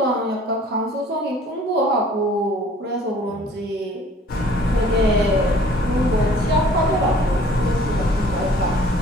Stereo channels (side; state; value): both; normal; correlation 0.53